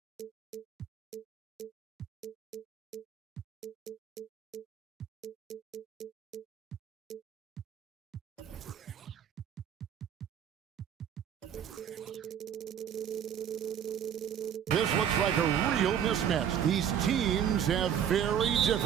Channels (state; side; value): quieter; left; 8.9 dB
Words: This looks like a real mismatch. These teams have very